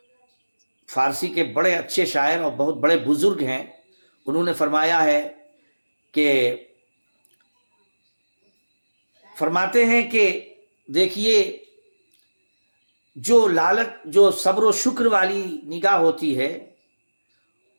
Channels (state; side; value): inverted; both; correlation -1.00